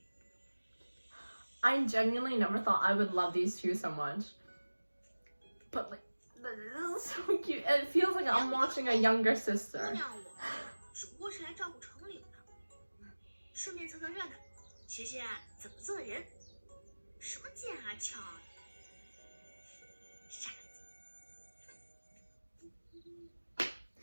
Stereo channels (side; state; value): both; inverted; correlation -1.00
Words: I genuinely never thought I would love these two so much. But like, this is so cute. It feels like I'm watching a younger 姑 sister. 娘我只不过是来照顾城里的，顺便凑凑热闹，学学怎么做人。什么剑啊鞘啊，傻子。